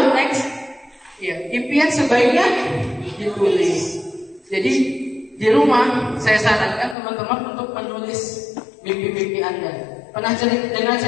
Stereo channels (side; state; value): right; drops out; at 7.0 s